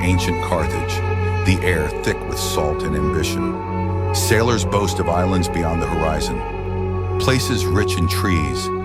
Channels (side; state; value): both; identical; correlation 1.00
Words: Carthage, the air thick with salt and ambition. Sailors boast of islands beyond the horizon, places rich in trees,